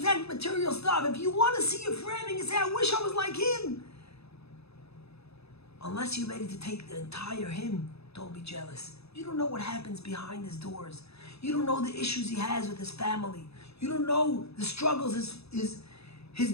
material stuff. If you want to see your friend and you say, I wish I was like him, unless you're ready to take the entire him, don't be jealous. You don't know what happens behind his doors. You don't know the issues he has with his family. You don't know the struggles his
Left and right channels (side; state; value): right; late; 0.79 ms